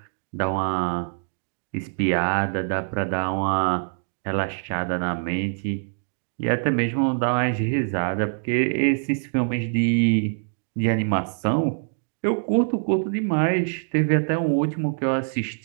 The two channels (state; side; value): silent; left; digital silence